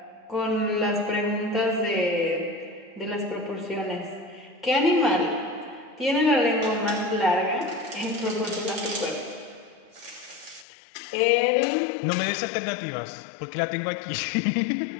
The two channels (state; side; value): drops out; right; at 10.7 s